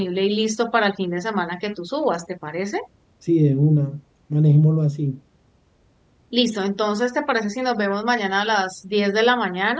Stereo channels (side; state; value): both; identical; correlation 1.00